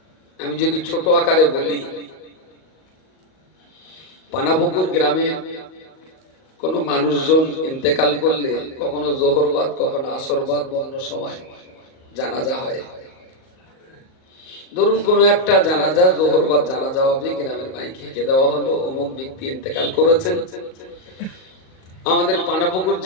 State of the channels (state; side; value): late; right; 38 ms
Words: আমি যদি ছোট আকারে বলি, পানাপুকুর গ্রামে কোন মানুষজন ইন্তেকাল করলে কখনো জোহরবাদ, কখনো আসরবাদ, অন্য সময় জানাজা হয়। ধরুন কোন একটা জানাজা, জোহরবাদ জানাজা হবে, গ্রামের মাইকে কে দেওয়া হলো অমুক ব্যক্তি ইন্তেকাল করেছেন। আমাদের পানাপুকুর